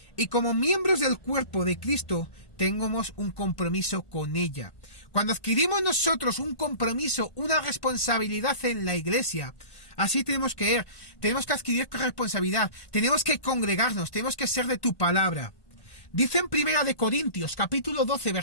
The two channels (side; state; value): right; late; 1.1 ms